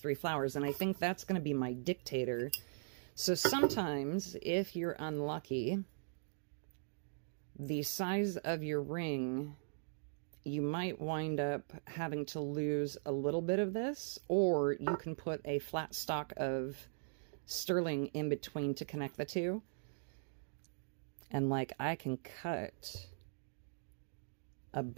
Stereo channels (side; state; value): left; silent; digital silence